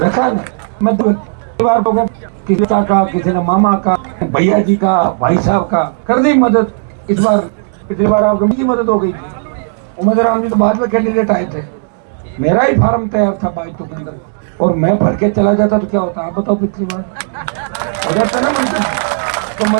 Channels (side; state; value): left; silent; digital silence